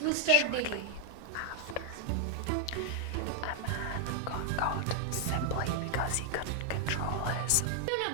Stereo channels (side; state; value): both; different; correlation 0.00